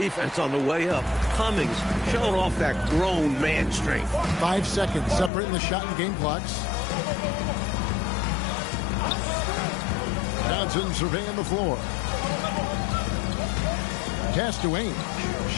on the way up. Cummings showing off that grown man strength. 5 seconds separating the shot and game clocks. Johnson surveying the floor. Pass to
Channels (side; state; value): right; drops out; at 5.3 s